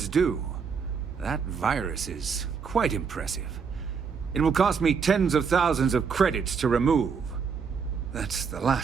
due. That virus is quite impressive. It will cost me tens of thousands of credits to remove. That's the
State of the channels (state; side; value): quieter; left; 6.0 dB